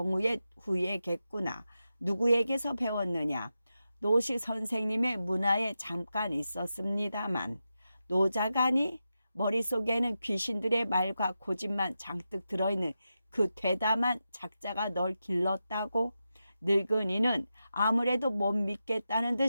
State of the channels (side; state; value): both; inverted; correlation -0.90